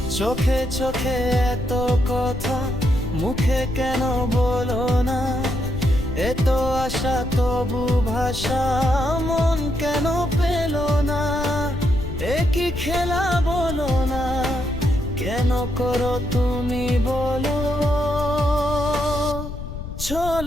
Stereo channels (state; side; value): noise; left; rumble, 8 dB below the sound